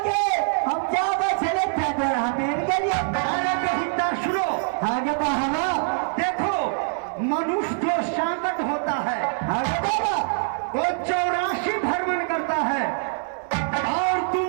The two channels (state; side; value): silent; left; 61 dB below the other